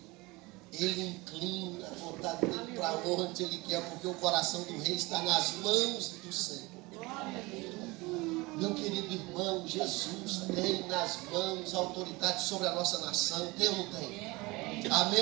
Ele inclina a vontade dele para onde ele quer, porque o coração do rei está nas mãos do Senhor. Meu querido irmão, Jesus tem nas mãos a autoridade sobre a nossa nação. Tem ou não tem?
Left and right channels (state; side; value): quieter; left; 23.3 dB